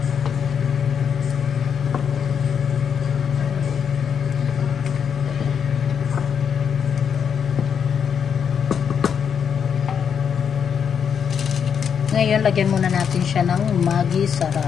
Ngayon, lagyan muna natin siya ng Maggi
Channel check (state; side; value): quieter; right; 7.4 dB